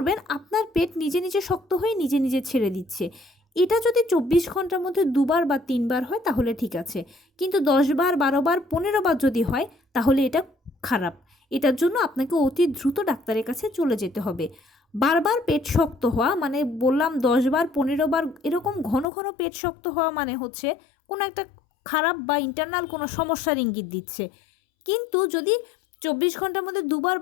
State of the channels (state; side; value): drops out; right; at 19.1 s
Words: আপনার পেট নিজে নিজে শক্ত হয়ে নিজে নিজে ছেড়ে দিচ্ছে। এটা যদি 24 ঘন্টার মধ্যে 2বার বা 3বার হয় তাহলে ঠিক আছে, কিন্তু 10বার, 12বার, 15বার যদি হয় তাহলে এটা খারাপ। এটার জন্য আপনাকে অতি দ্রুত ডাক্তারের কাছে চলে যেতে হবে। বারবার পেট শক্ত হওয়া মানে বললাম 10বার, 15বার এরকম ঘন ঘন পেট শক্ত হওয়া মানে হচ্ছে কোনো একটা খারাপ বা ইন্টারনাল কোনো সমস্যার ইঙ্গিত দিচ্ছে। কিন্তু যদি 24 ঘন্টার মধ্যে 2বার